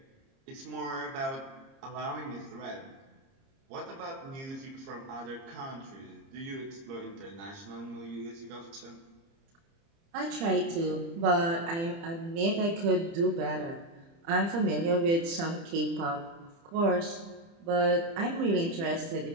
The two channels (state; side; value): late; left; 30 ms